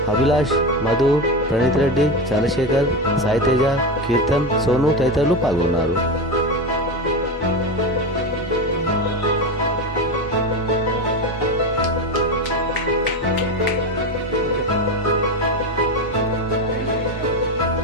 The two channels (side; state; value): both; normal; correlation 0.18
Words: అభిలాష్, మధు, ప్రణీత్ రెడ్డి, చంద్రశేఖర్, సాయితేజ, కీర్తన్, సోను తదితరులు పాల్గొన్నారు.